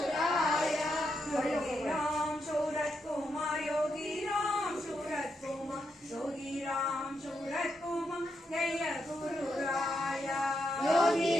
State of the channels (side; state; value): both; normal; correlation 0.82